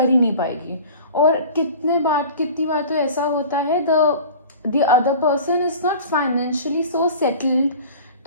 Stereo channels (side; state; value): both; inverted; correlation -0.41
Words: ही नहीं पाएगी। और कितनी बार तो ऐसा होता है, the other person is not financially so settled,